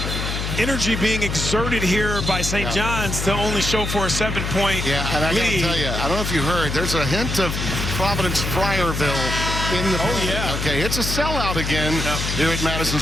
energy being exerted here by St. John's to only show for a 7-point Yeah, and I lead. gotta tell you, I don't know if you heard, there's a hint of Providence Friarville in the building. Yeah. Okay, it's a sellout again here at Madison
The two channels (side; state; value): left; noise; hum, 3 dB below the sound